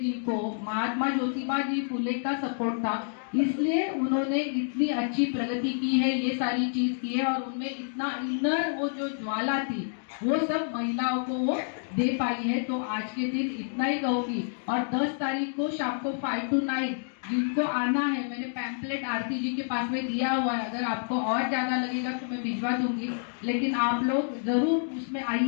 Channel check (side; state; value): right; silent; digital silence